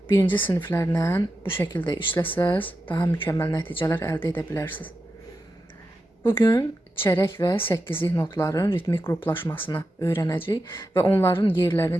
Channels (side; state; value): both; normal; correlation 0.89